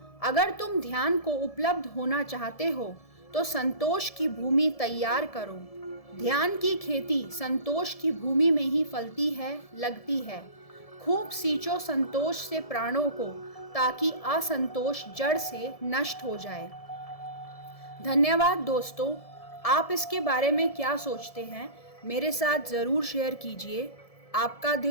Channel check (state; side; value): late; right; 1.7 ms